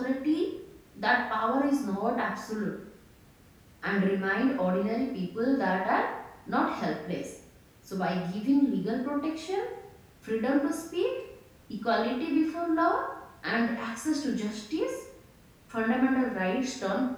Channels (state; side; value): identical; both; correlation 1.00